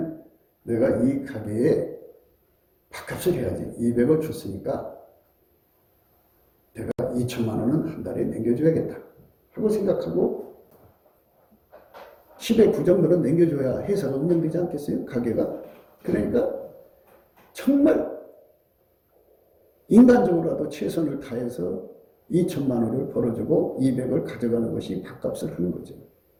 내가 이 가게에 밥값을 해야지. 200을 줬으니까 내가 2천만 원은 한 달에 남겨줘야겠다 하고 생각하고 10의 9 정도는 남겨줘야 회사가 운영되지 않겠어요? 가게가. 그러니까 정말 인간적으로라도 최선을 다해서 2천만 원을 벌어주고 200을 가져가는 것이 밥값을 하는 거죠.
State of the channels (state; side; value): identical; both; correlation 1.00